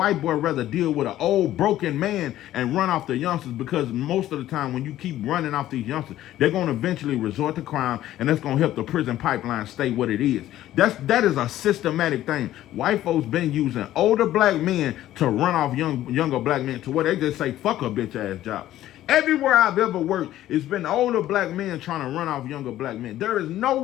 boy rather deal with an old broken man and run off the youngsters because most of the time when you keep running off these youngsters, they're going to eventually resort to crime and that's going to help the prison pipeline stay what it is. That is a systematic thing. White folks been using older black men to run off younger black men to where they just say, fuck a bitch ass job. Everywhere I've ever worked, it's been older black men trying to run off younger black men. There is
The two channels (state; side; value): quieter; right; 13.6 dB